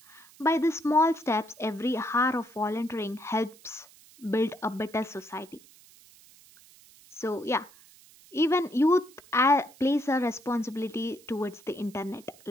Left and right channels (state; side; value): noise; right; hiss, 25 dB below the sound